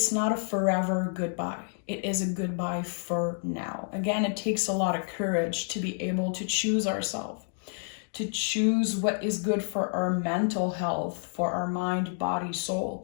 not a forever goodbye. It is a goodbye for now. Again, it takes a lot of courage to be able to choose ourselves, to choose what is good for our mental health, for our mind, body,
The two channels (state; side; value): silent; right; 59 dB below the other